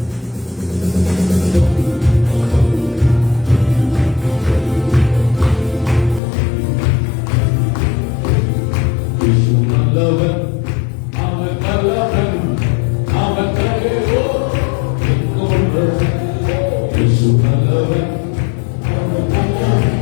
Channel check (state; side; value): drops out; right; at 6.2 s